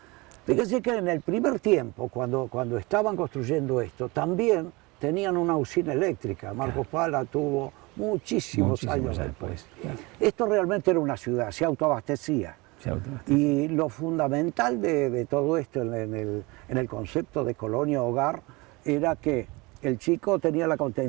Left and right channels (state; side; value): quieter; left; 24.7 dB